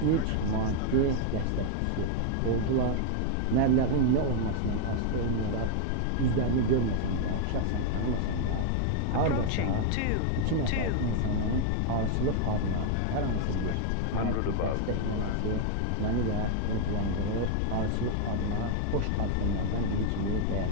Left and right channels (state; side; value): different; both; correlation 0.00